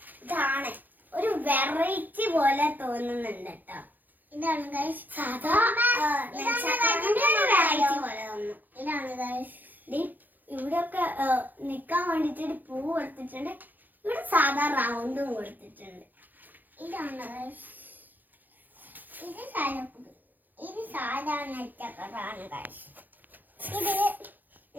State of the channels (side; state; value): left; late; 0.085 ms